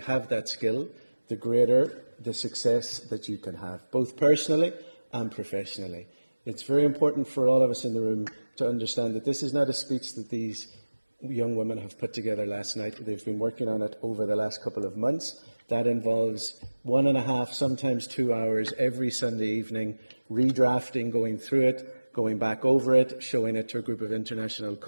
that skill, the greater the success that you can have, both personally and professionally. It's very important for all of us in the room to understand that this is not a speech that these young women have put together last night. They've been working on it over the last couple of months. That involves 1.5, sometimes 2 hours every Sunday evening, redrafting, going through it, going back over it, showing it to a group of international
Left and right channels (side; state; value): both; inverted; correlation -1.00